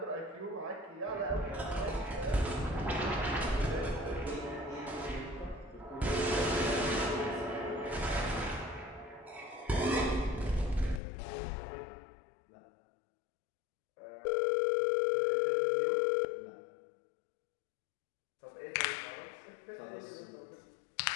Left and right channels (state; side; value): drops out; right; at 11.0 s